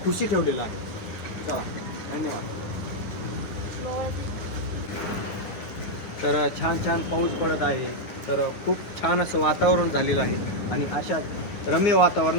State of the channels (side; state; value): right; late; 10 ms